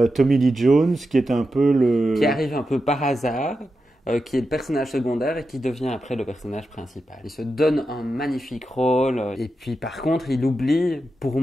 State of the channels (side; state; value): both; normal; correlation 0.89